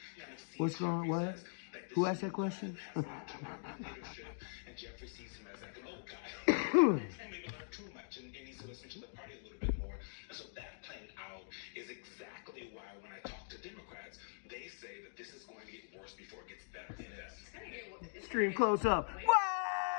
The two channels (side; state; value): right; silent; digital silence